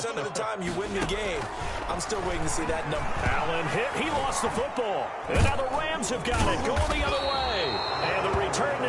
of the time you win the game. I'm still waiting to see that number. Allen hit. He lost the football. And now the Rams have got it. Going the other way. And the return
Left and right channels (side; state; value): both; identical; correlation 1.00